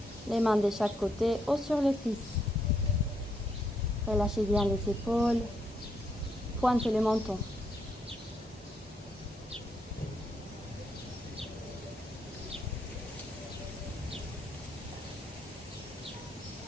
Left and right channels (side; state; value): both; normal; correlation 0.76